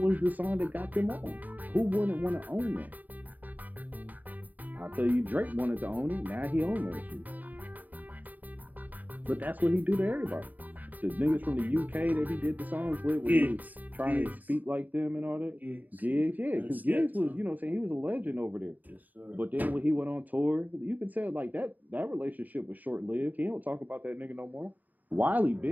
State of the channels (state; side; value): late; left; 0.082 ms